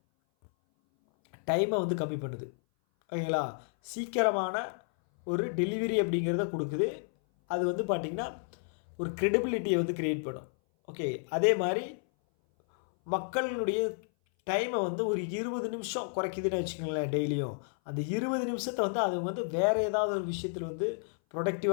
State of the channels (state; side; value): silent; right; 57 dB below the other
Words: டைமை வந்து கம்மி பண்ணுது, ஓகேங்களா. சீக்கிரமான ஒரு டெலிவரி அப்படிங்கிறத கொடுக்குது. அது வந்து பார்த்திங்கன்னா ஒரு க்ரெடிபிலிட்டியை வந்து க்ரியேட் பண்ணும். ஓகே, அதே மாதிரி மக்களுடைய டைமை வந்து ஒரு 20 நிமிஷம் குறைக்குதுன்னு வச்சுக்கோங்களேன் டெய்லியும். அந்த 20 நிமிஷத்தை வந்து அது வந்து வேறு ஏதாவது ஒரு விஷயத்தில் வந்து